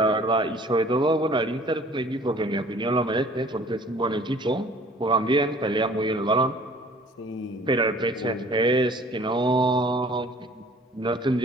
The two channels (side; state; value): both; normal; correlation 0.51